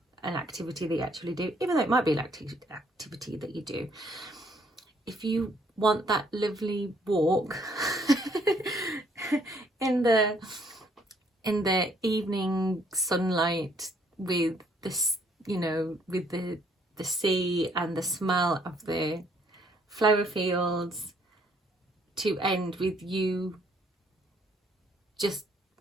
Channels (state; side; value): normal; both; correlation 0.66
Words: an activity that you actually do, even though it might be an activity that you do. If you want that lovely walk in the evening sunlight with this, you know, with the sea and the smell of the flower fields, to end with you just,